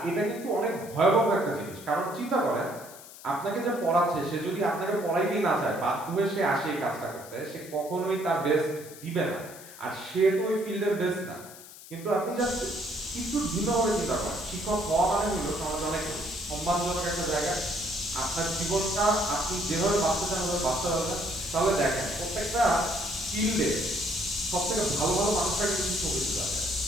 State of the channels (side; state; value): left; noise; hiss, 17 dB below the sound